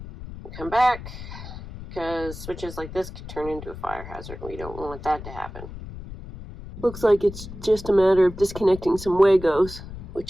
and come back, because switches like this could turn into a fire hazard. We don't want that to happen. Looks like it's just a matter of disconnecting some Wagos,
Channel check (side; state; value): left; noise; rumble, 12 dB below the sound